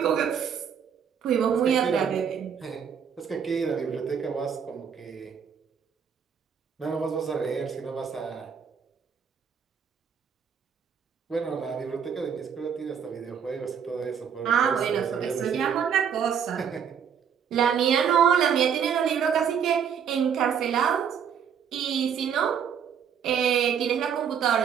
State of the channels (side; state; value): left; quieter; 7.6 dB